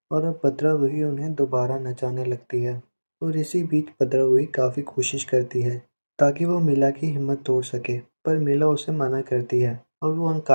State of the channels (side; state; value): both; inverted; correlation -1.00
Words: और अब भद्रवही उन्हें दोबारा नचाने लगती है। और इसी बीच भद्रवही काफ़ी कोशिश करती है ताकि वो मीला की हिम्मत तोड़ सके, पर मीला उसे मना करती है और वो